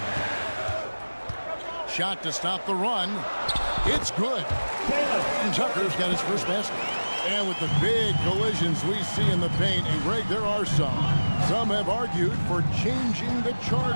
Shot to stop the run. It's good. Horton-Tucker's got his first basket. And with the big collisions we see in the paint, and Greg, there are some. Some have argued for changing the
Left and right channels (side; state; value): both; inverted; correlation -1.00